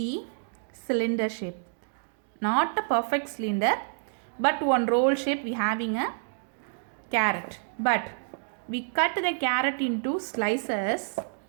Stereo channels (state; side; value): silent; left; digital silence